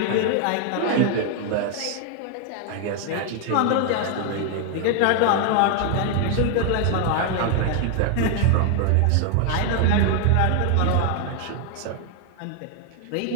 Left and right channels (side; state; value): both; different; correlation 0.00